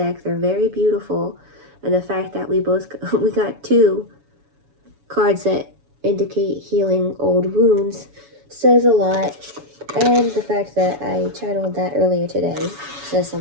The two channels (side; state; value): left; late; 7.1 ms